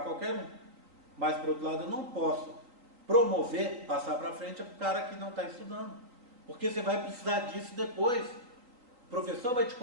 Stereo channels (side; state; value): left; late; 3.9 ms